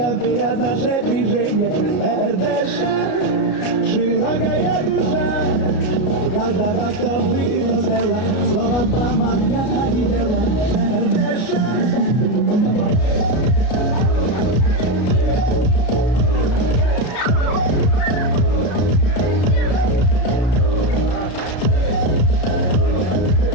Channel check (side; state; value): right; late; 33 ms